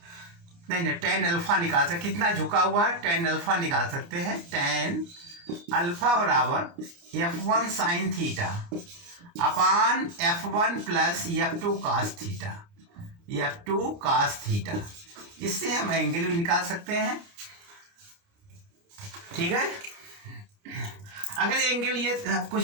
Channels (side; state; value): left; late; 29 ms